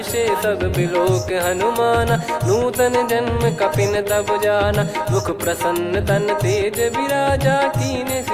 सब बिलोक हनुमाना, नूतन जन्म कपिन तब जाना। मुख प्रसन्न तन तेज विराजा, कीने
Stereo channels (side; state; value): both; identical; correlation 1.00